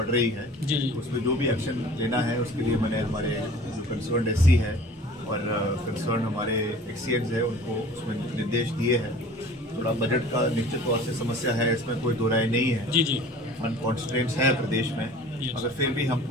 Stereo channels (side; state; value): both; normal; correlation 0.45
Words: रही है जी। तो उसमें जो भी एक्शन लेना है उसके लिए मैंने हमारे जो कंसर्न SC है और कंसर्न हमारे एक्सीएंस है उनको उसमें निर्देश दिए हैं। थोड़ा बजट का निश्चित तौर से समस्या है, इसमें कोई दो राय नहीं है। जी फंड कॉन्स्ट्रेंट्स हैं प्रदेश में, मगर फिर भी हम